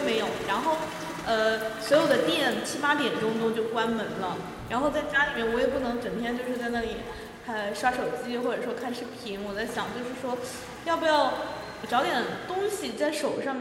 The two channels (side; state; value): both; identical; correlation 1.00